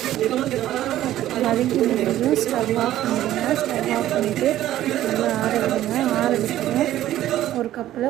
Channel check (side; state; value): left; quieter; 13.4 dB